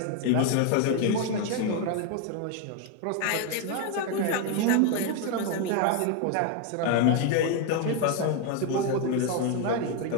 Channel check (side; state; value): both; different; correlation 0.01